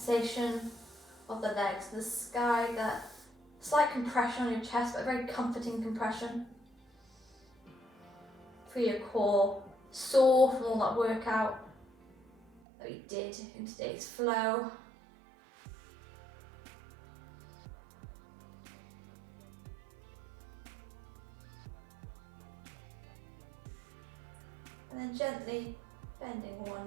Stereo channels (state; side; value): drops out; left; at 12.6 s